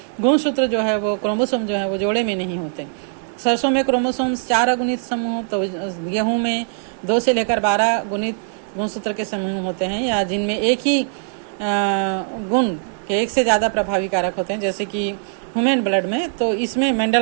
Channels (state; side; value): silent; left; digital silence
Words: गुणसूत्र जो है वो क्रोमोसोम जो है वो जोड़े में नहीं होते। सरसों में क्रोमोसोम्स 4 अगुणित समूह, तो गेहूं में 2 से लेकर 12 गुणित गुणसूत्र के समूह होते हैं, या जिनमें एक ही गुण के एक से ज्यादा प्रभावी कारक होते हैं जैसे कि ह्यूमन ब्लड में। तो इसमें